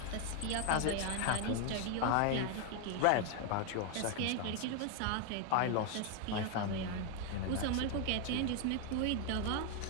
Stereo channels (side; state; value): both; different; correlation 0.01